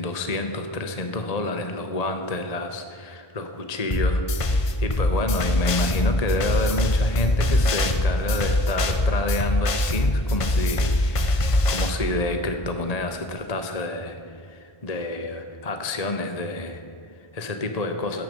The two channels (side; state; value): right; late; 1.5 ms